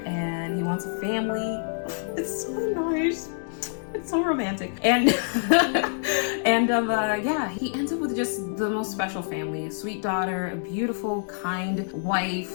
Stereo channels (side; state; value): right; silent; digital silence